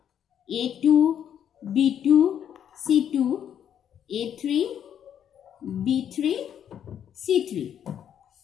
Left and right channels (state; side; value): quieter; right; 9.3 dB